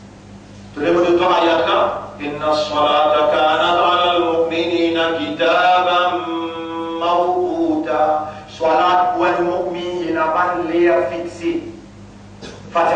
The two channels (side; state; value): both; identical; correlation 1.00